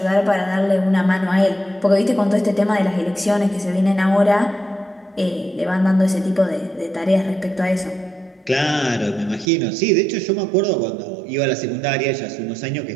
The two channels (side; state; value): left; drops out; at 9.5 s